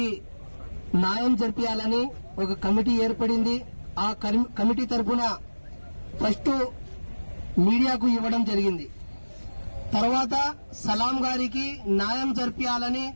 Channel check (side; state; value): both; inverted; correlation -1.00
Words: న్యాయం జరిపించాలని ఒక కమిటీ ఏర్పడింది. ఆ కమిటీ తరఫున ఫస్ట్ మీడియాకు ఇవ్వడం జరిగింది. తర్వాత సలాం గారికి న్యాయం జరిపించాలని